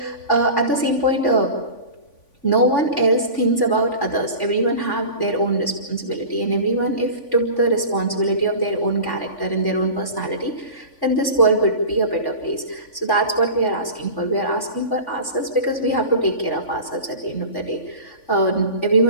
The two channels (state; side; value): late; right; 3.5 ms